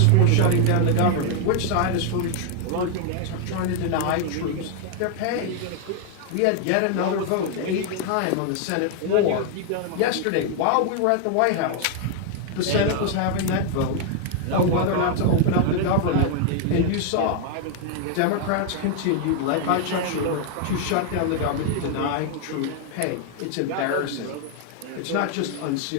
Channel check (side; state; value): both; different; correlation 0.00